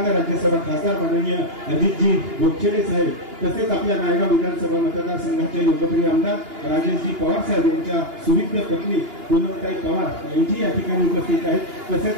राज्यसभा खासदार माननीय अजितजी गोपछेडे साहेब, तसेच आपल्या नायगाव विधानसभा मतदारसंघाचे लोकप्रिय आमदार राजेशजी पवार साहेब यांच्या सुविद्य पत्नी पूनमताई पवार यांची या ठिकाणी उपस्थित आहेत।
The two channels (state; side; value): late; left; 2.9 ms